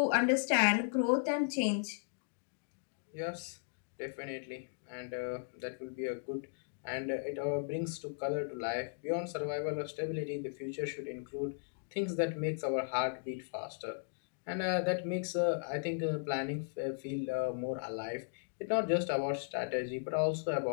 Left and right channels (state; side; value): silent; right; digital silence